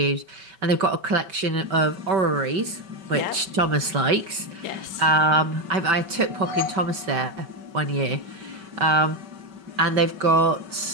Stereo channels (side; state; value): left; late; 5.2 ms